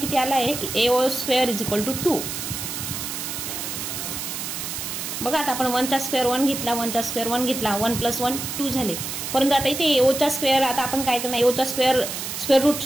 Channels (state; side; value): noise; right; hiss, 5 dB below the sound